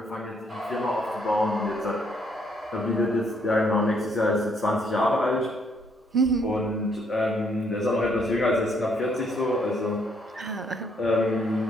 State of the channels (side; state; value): both; normal; correlation 0.70